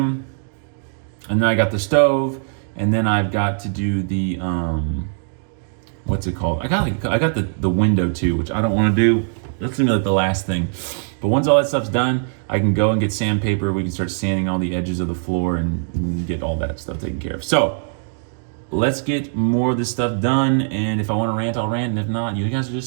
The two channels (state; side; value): silent; left; digital silence